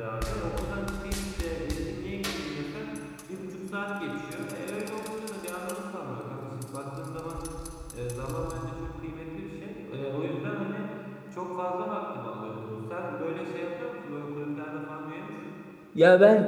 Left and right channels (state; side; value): identical; both; correlation 1.00